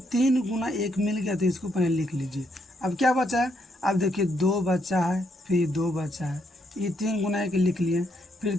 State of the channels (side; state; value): both; normal; correlation 0.76